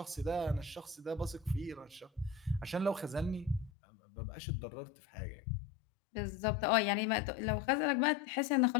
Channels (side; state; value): right; drops out; at 3.7 s